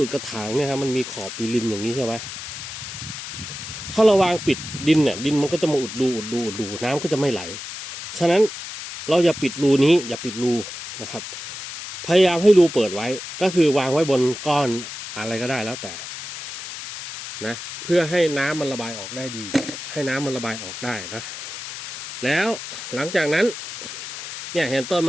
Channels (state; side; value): noise; left; hiss, 9 dB below the sound